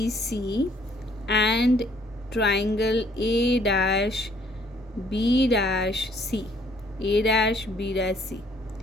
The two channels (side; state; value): both; normal; correlation 0.63